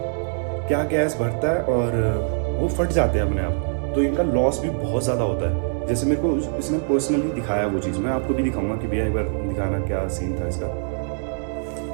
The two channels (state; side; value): silent; left; digital silence